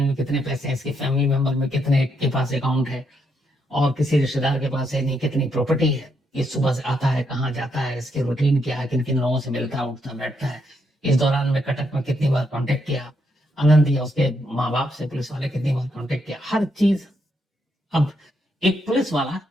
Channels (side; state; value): both; normal; correlation 0.77